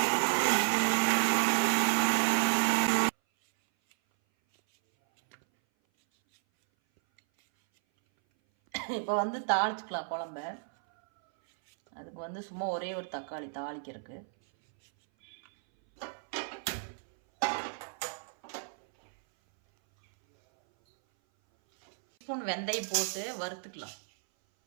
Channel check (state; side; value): silent; left; 57 dB below the other